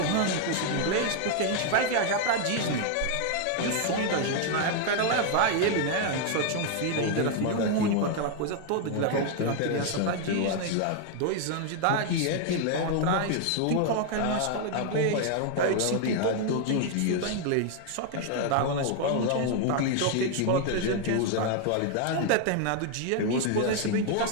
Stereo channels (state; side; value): different; both; correlation 0.00